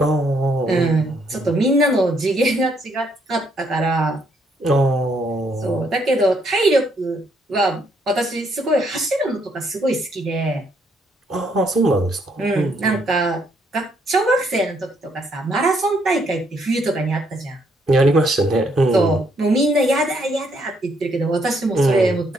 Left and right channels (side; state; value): both; normal; correlation 0.71